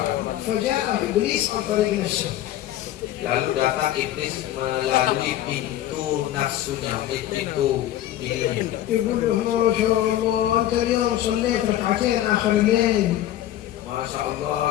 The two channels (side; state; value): right; quieter; 13.0 dB